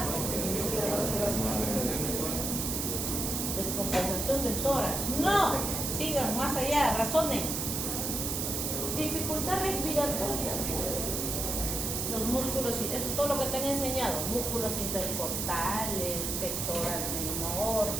Descompensación del tórax. No, sigan más allá, razonen. Dificultad respiratoria. Los músculos, eso es todo lo que te han enseñado. Músculos intercostales, pectoral menor,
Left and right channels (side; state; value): right; noise; hiss, 1 dB below the sound